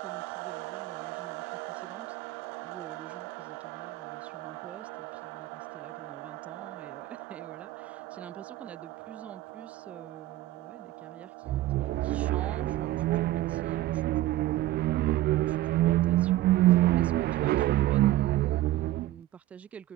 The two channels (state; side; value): quieter; left; 15.2 dB